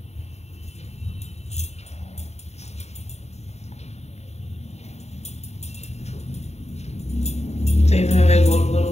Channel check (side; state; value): right; late; 0.32 ms